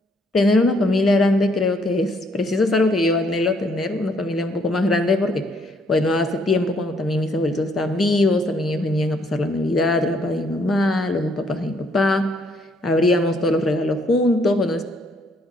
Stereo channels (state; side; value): normal; both; correlation 0.68